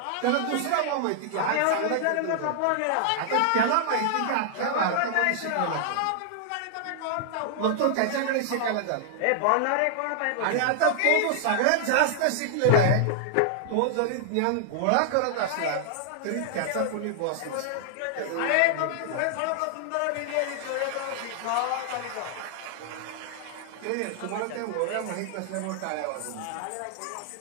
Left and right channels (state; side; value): different; both; correlation -0.01